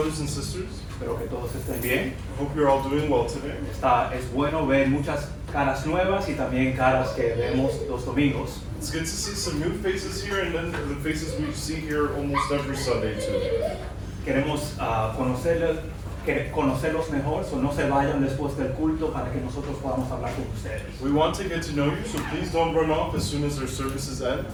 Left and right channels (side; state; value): both; identical; correlation 1.00